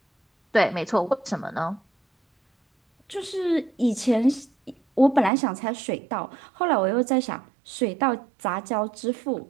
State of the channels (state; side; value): drops out; left; at 5.3 s